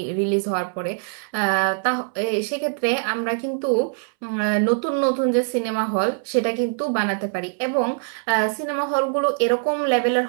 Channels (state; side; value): silent; left; 64 dB below the other